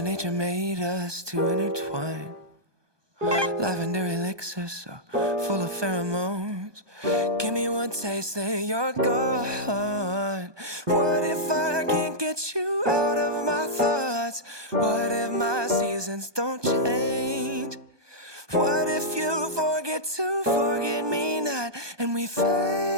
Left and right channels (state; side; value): late; left; 1.2 ms